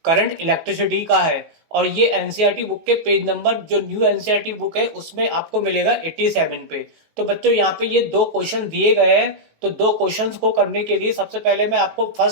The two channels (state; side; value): late; left; 19 ms